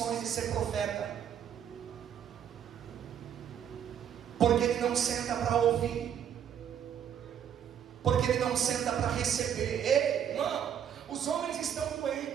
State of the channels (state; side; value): quieter; left; 9.1 dB